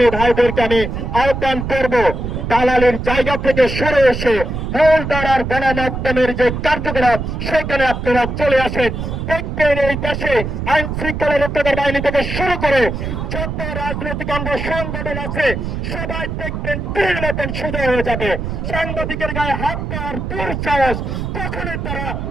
ভাইদেরকে আমি আহ্বান করব, দালালের জায়গা থেকে সরে এসে মূল ধারার গণমাধ্যমের যে কার্যকলাপ সেখানে আপনারা চলে আসেন। দেখবেন এই দেশে আইন শৃঙ্খলা রক্ষাকারী বাহিনী থেকে শুরু করে যত রাজনৈতিক অঙ্গ সংগঠন আছে সবাই দেখবেন তীর মতন সোজা হয়ে যাবে। সাংবাদিকের গায়ে হাত দেওয়ার দুঃসাহস কখনোই তারা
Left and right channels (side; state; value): right; noise; rumble, 4 dB below the sound